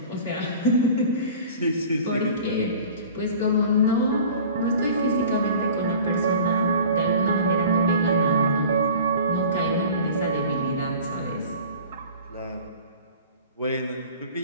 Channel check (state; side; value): inverted; both; correlation -0.43